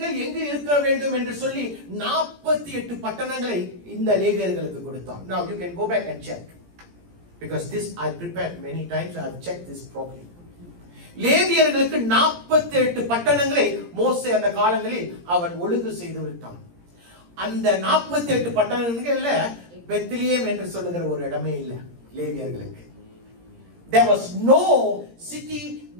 எங்கு இருக்க வேண்டும் என்று சொல்லி 48 பட்டணங்களை இந்த லேவியர்களுக்கு கொடுத்தான். Now you can go back and check because this I prepared many times. I have checked this properly. லேவியர்களுக்கு 48 பட்டணங்களை மோசே அந்த காலங்களில் அவன் ஒழுங்கு செய்து விட்டான். அந்த 48 பட்டணங்கள்ல பெத்லகேம் என்று சொல்லுகிற ஒரு இடமே இல்ல லேவியர்களுக்கு. There was no city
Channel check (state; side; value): late; left; 17 ms